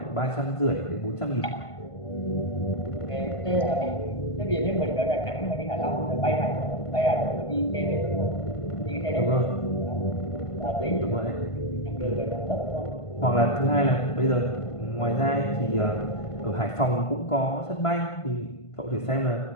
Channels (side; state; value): right; late; 1.5 ms